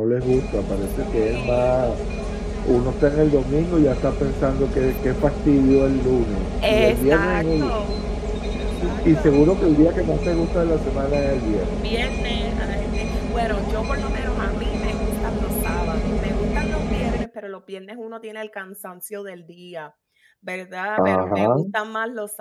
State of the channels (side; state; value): both; identical; correlation 1.00